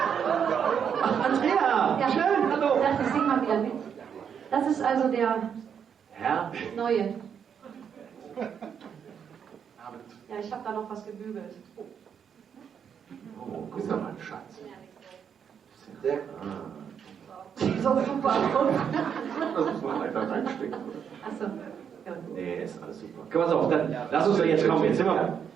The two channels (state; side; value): quieter; left; 7.6 dB